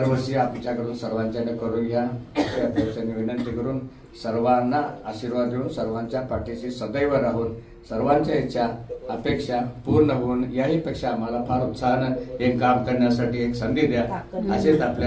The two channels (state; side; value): identical; both; correlation 1.00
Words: आमच्याकडून सर्वांच्याकडे करून घ्या अशी अपेक्षेने विनंती करून सर्वांना आशीर्वाद देऊन सर्वांच्या पाठीशी सदैव राहून सर्वांच्या इच्छा अपेक्षा पूर्ण होऊन याही पेक्षा आम्हाला फार उत्साहानं एक काम करण्यासाठी एक संधी द्या, असेच